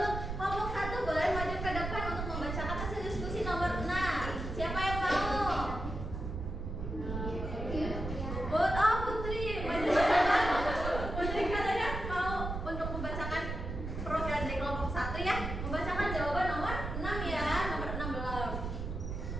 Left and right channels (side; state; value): right; noise; rumble, 5 dB below the sound